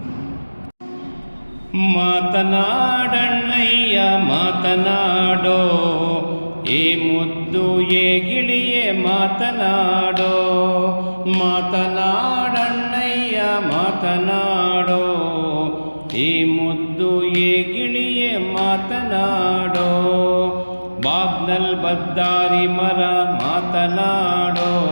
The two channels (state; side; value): inverted; both; correlation -1.00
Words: ಮಾತನಾಡಣ್ಣಯ್ಯ ಮಾತನಾಡೋ, ಏ ಮುದ್ದು ಏ ಗಿಳಿಯೇ ಮಾತನಾಡೋ. ಮಾತನಾಡಣ್ಣಯ್ಯ ಮಾತನಾಡೋ, ಏ ಮುದ್ದು ಏ ಗಿಳಿಯೇ ಮಾತನಾಡೋ. ಬಾಗ್ನಲ್ ಬದ್ದಾರಿ ಮರ ಮಾತನಾಡೋ,